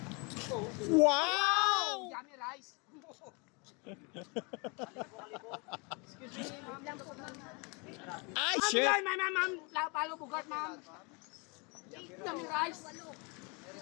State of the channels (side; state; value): right; quieter; 30.9 dB